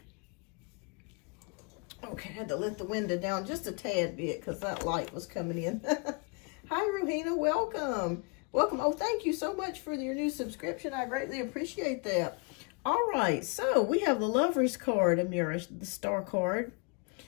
Okay, had to let the window down just a tad bit because that light was coming in. Hi, Rohina. Welcome. Welcome. Oh, thank you so much for your new subscription. I greatly appreciate that. All right. So we have the Lover's card, Amira, the Star card,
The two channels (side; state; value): right; quieter; 32.5 dB